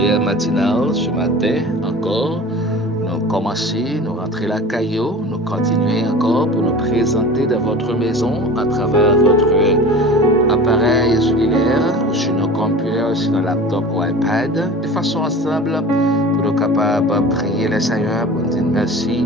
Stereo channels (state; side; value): normal; both; correlation 0.37